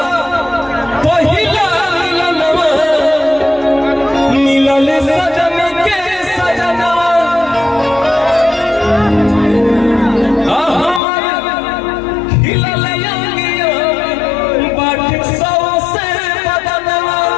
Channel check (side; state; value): right; drops out; at 11.0 s